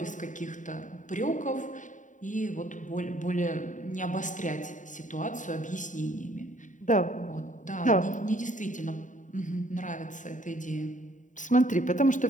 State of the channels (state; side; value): late; right; 0.37 ms